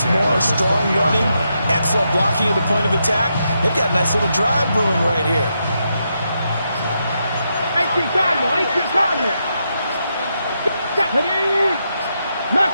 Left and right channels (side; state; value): both; inverted; correlation -0.82